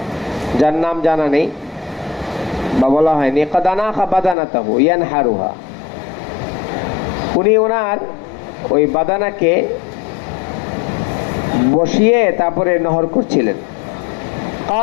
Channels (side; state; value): right; drops out; at 4.4 s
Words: যার নাম জানা নেই বা বলা হয়নি। قد أناخ بدنته ينحرها। উনি ওনার ওই বাদানাকে বসিয়ে তারপরে নহর করছিলেন।